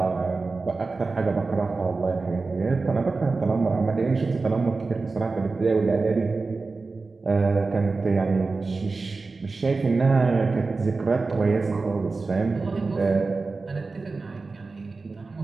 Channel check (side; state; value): left; quieter; 3.9 dB